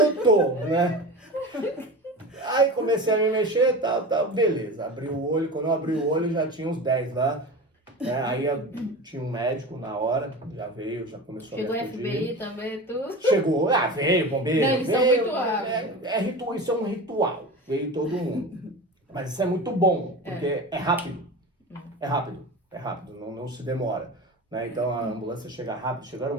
tô, né? Aí comecei a me mexer e tal. Beleza, abri o olho. Quando eu abri o olho, já tinha uns 10 lá. Né? Aí tinha um médico na hora, já veio, já começou Chegou a o me acudir. FBI também, tudo. Chegou, veio, bombeiro. Não, eles são veio, muito rápidos. isso é um ritual, veio todo mundo. Mas isso é muito bom, porque é rápido. É rápido, não se demora. Né? Então a ambulância chega rápido, chegaram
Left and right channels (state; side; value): normal; both; correlation 0.30